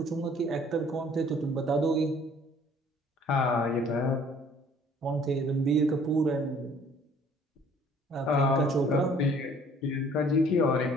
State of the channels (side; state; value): both; normal; correlation 0.56